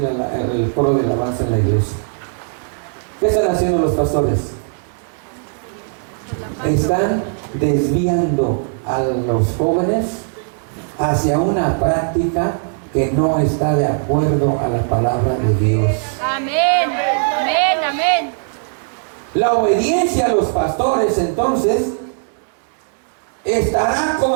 el coro de alabanza en la iglesia. ¿Qué están haciendo los pastores? Están desviando a los jóvenes hacia una práctica que no está de acuerdo a la palabra de Dios. Amén, amén, amén. La obediencia a los pastores, entonces, estará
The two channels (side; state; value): left; silent; 67 dB below the other